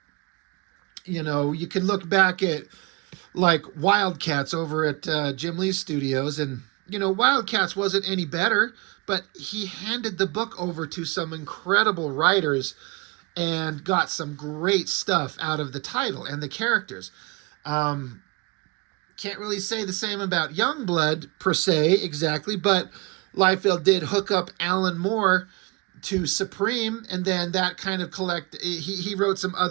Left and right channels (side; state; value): left; quieter; 28.1 dB